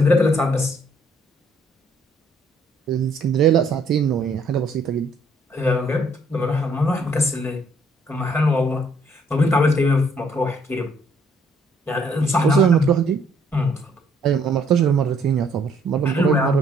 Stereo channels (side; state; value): both; normal; correlation 0.65